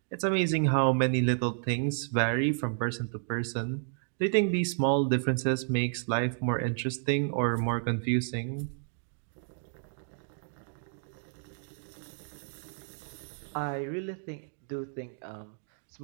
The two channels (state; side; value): silent; left; digital silence